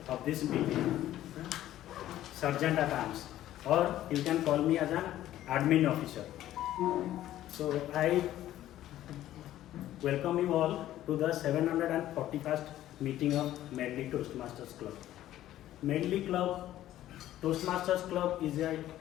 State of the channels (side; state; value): right; quieter; 13.4 dB